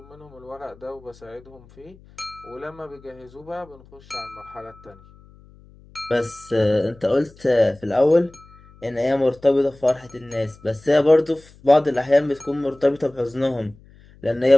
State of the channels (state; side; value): noise; left; hum, 25 dB below the sound